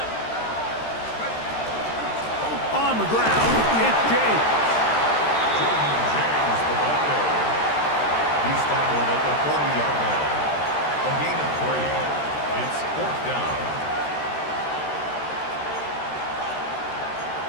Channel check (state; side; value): late; right; 13 ms